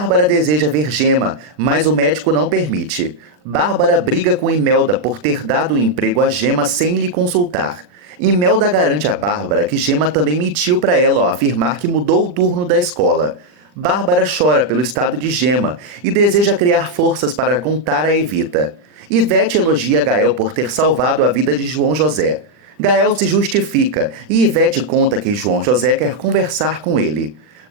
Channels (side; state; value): left; late; 39 ms